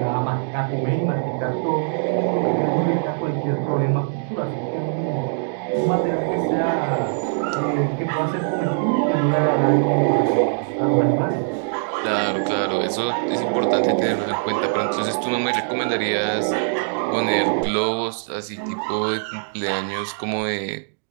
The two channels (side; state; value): left; silent; digital silence